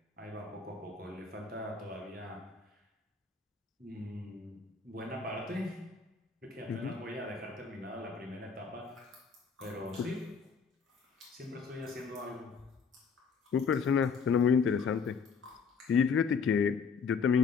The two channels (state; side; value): quieter; right; 5.7 dB